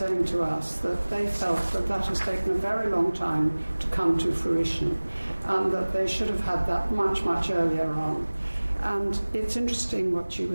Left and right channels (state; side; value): inverted; both; correlation -1.00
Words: to us that they felt that has taken a very long time to come to fruition, and that they should have had that much, much earlier on. And it's interesting what you